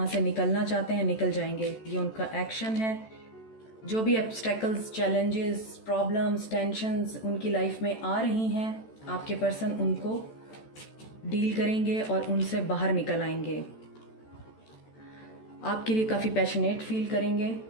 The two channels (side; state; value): right; late; 14 ms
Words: से निकलना चाहते हैं, निकल जाएंगे। ये उनका एक्शन है। जो भी ऑब्स्टेकल्स, चैलेंजेस, प्रॉब्लम्स, टेंशन्स उनकी लाइफ में आ रही हैं, आपके पर्सन उनको डील करेंगे और उनसे बाहर निकल आएंगे। आपके लिए काफ़ी पैशनेट फील करेंगे।